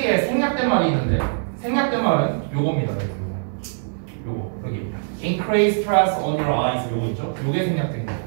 생략된 말이 있는데 생략된 말은 요겁니다. 요거 여기 increase stress on your eyes 요거 있죠? 요게 생략된 거예요.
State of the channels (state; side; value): silent; left; 64 dB below the other